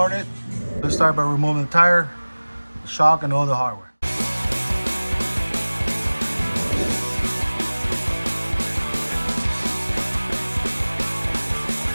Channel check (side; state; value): both; inverted; correlation -1.00